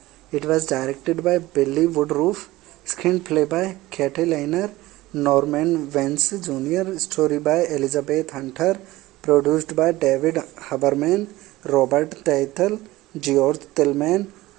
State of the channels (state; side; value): quieter; left; 18.1 dB